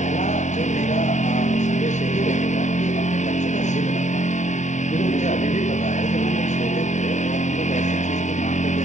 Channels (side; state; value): right; late; 0.34 ms